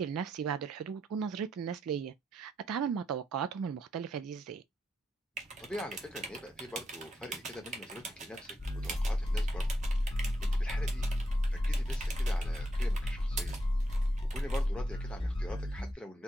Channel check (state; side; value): normal; both; correlation 0.82